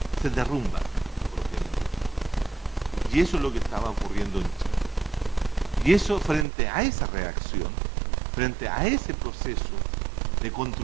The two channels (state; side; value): drops out; left; at 6.5 s